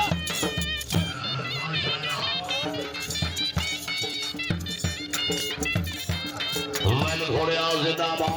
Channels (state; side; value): identical; both; correlation 1.00